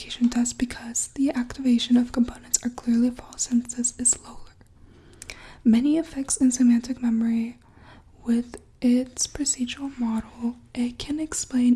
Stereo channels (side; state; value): both; identical; correlation 1.00